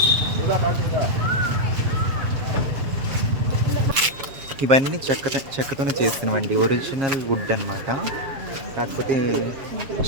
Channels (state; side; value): late; left; 7.4 ms